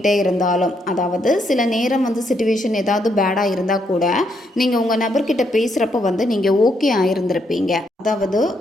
இருந்தாலும், அதாவது சில நேரம் வந்து சிச்சுவேஷன் ஏதாவது பேடாக இருந்தால் கூட நீங்கள் உங்கள் நபர்கிட்ட பேசுகிறப்ப வந்து நீங்கள் ஓகே ஆகிருந்திருப்பீங்க. அதாவது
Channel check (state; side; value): normal; both; correlation 0.76